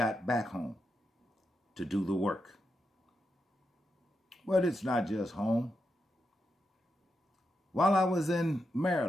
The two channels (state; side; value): normal; both; correlation 0.86